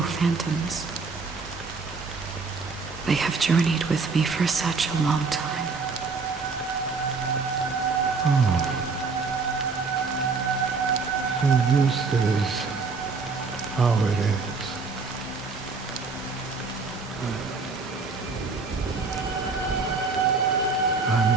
phantoms, they have journeyed with me for such a long time. So this is how it is.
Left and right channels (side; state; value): left; quieter; 4.5 dB